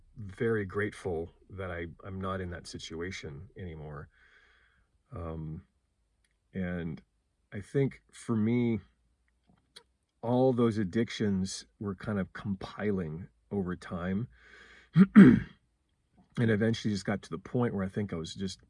very grateful that I'm not in that situation anymore. Um, and I think for me, all those addictions were kind of compiling over time. And eventually just got to the point where I think I was just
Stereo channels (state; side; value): identical; both; correlation 1.00